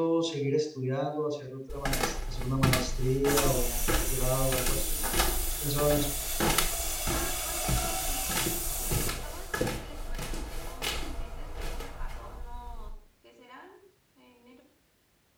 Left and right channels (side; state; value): both; identical; correlation 1.00